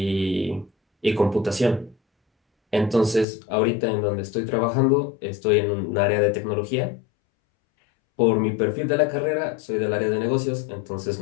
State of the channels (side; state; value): right; drops out; at 3.2 s